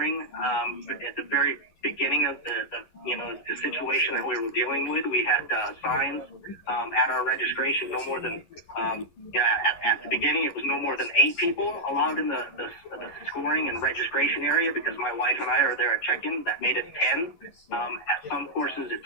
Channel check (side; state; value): right; late; 11 ms